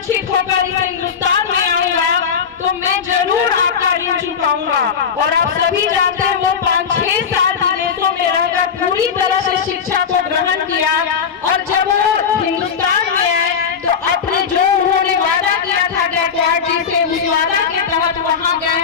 होकर इस हिंदुस्तान में आऊंगा तो मैं जरूर आपका ऋण चुकाऊंगा। और आप सभी जानते हैं वो 5-6 साल विदेशों में रहकर पूरी तरह से शिक्षा को ग्रहण किया, और जब वो हिंदुस्तान में आए तो अपने जो उन्होंने वादा किया था गायकवाड़ जी से, उस वादा के तहत वहां गए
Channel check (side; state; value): right; quieter; 6.7 dB